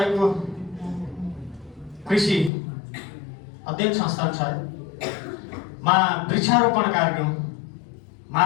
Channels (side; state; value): right; drops out; at 2.5 s